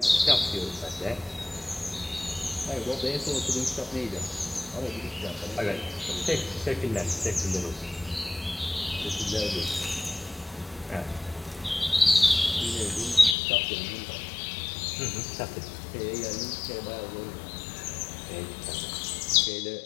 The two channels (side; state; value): right; drops out; at 13.4 s